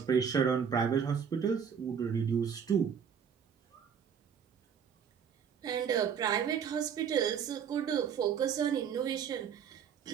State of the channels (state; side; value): quieter; left; 7.4 dB